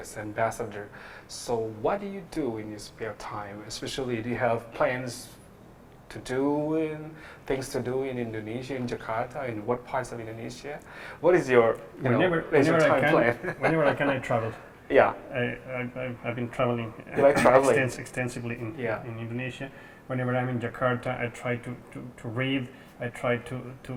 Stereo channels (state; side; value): identical; both; correlation 1.00